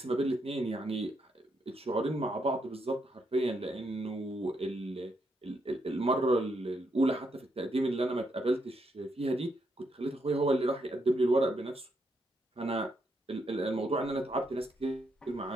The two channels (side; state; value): both; normal; correlation 0.78